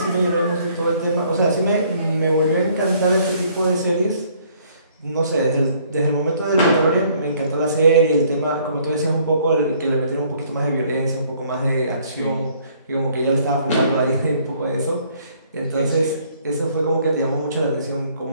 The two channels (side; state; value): both; inverted; correlation -0.62